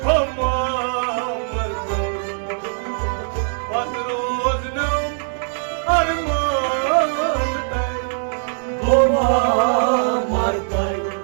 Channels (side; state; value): left; silent; digital silence